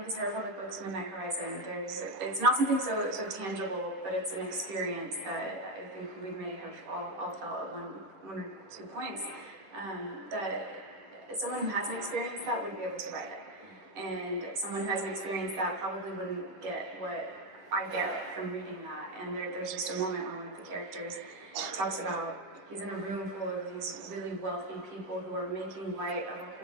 his High Republic books, Midnight Horizon, it's not something so tangible, but it's an experience that I think we may have all felt at one or two points. That someone who hasn't experienced that wouldn't be able to write it. And someone who hasn't experienced that probably wouldn't get what I get from reading that. And there's just a moment where one of the characters talks about he's in a room full of these really wealthy people who are making light of a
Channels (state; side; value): late; left; 10 ms